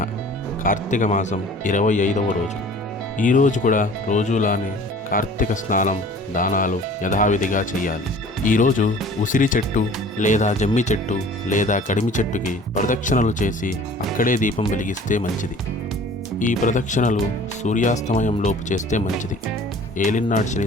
కార్తీక మాసం 25వ రోజు. ఈరోజు కూడా రోజులానే కార్తీక స్నానం, దానాలు యథావిధిగా చేయాలి. ఈరోజు ఉసిరి చెట్టు లేదా జమ్మి చెట్టు లేదా కడిమి చెట్టుకి ప్రదక్షిణలు చేసి అక్కడే దీపం వెలిగిస్తే మంచిది. ఈ ప్రదక్షిణలు సూర్యాస్తమయంలోపు చేస్తే మంచిది. ఏలినాటి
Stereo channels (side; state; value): both; normal; correlation 0.47